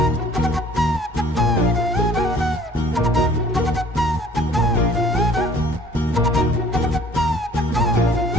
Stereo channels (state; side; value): normal; both; correlation 0.53